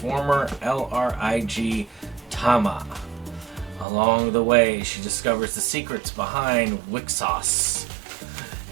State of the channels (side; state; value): left; drops out; at 3.9 s